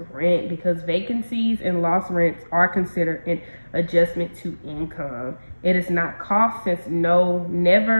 rent, because vacancies and lost rents are considered an adjustment to income. It is not cost since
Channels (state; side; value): inverted; both; correlation -1.00